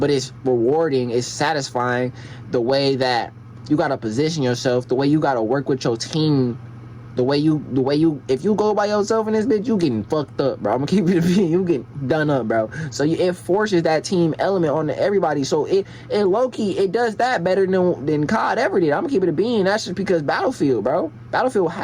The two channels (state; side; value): identical; both; correlation 1.00